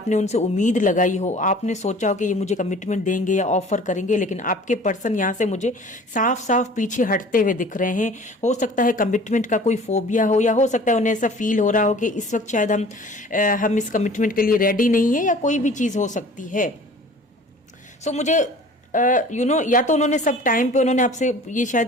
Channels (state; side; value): normal; both; correlation 0.46